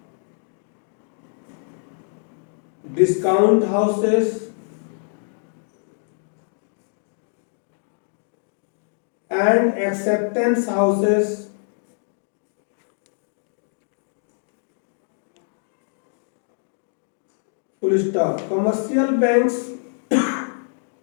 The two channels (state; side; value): silent; right; digital silence